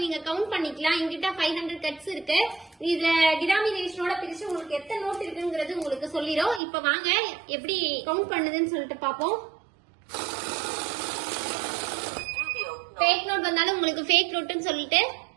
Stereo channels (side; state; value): left; drops out; at 6.6 s